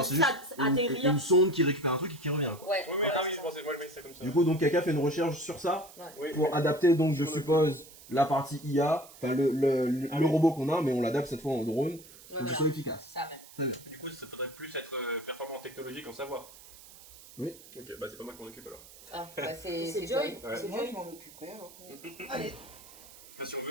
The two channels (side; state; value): right; noise; hiss, 20 dB below the sound